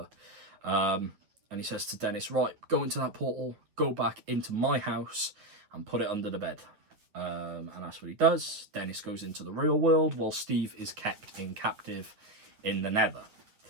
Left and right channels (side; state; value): left; late; 9.3 ms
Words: And he says to Dennis, right, go into that portal, go back into my house and put it under the bed. And that's what he does. Dennis goes into the real world while Steve is kept in captive in the Nether.